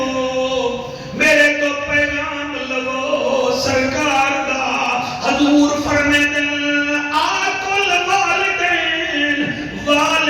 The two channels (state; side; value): identical; both; correlation 1.00